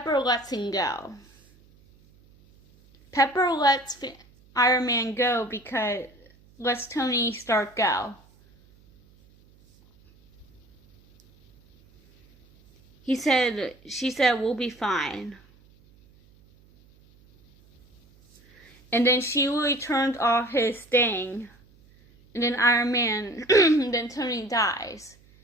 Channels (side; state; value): right; noise; hum, 29 dB below the sound